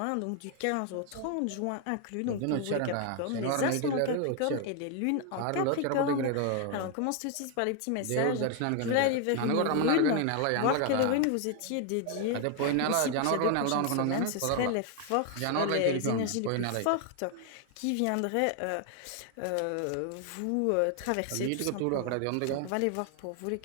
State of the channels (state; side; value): different; both; correlation 0.01